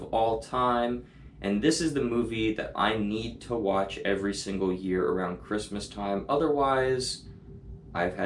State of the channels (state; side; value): identical; both; correlation 1.00